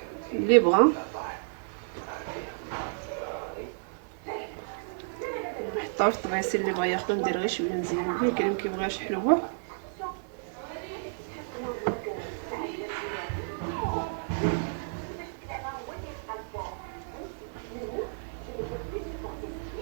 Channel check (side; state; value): left; silent; digital silence